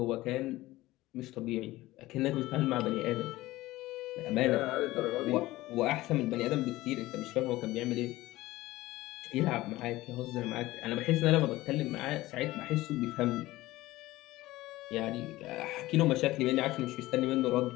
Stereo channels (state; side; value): quieter; right; 17.9 dB